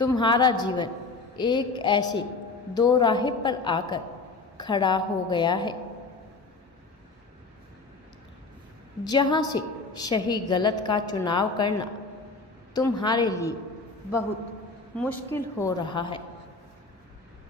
जीवन एक ऐसे दो राह पर आकर खड़ा हो गया है जहां से सही गलत का चुनाव करना तुम्हारे लिए बहुत मुश्किल हो रहा है।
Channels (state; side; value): quieter; right; 3.8 dB